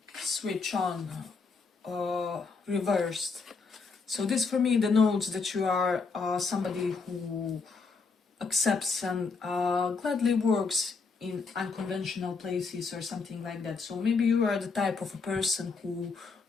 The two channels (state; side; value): quieter; right; 4.6 dB